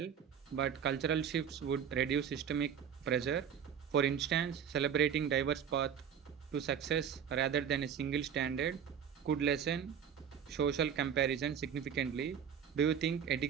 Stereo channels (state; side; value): quieter; left; 8.0 dB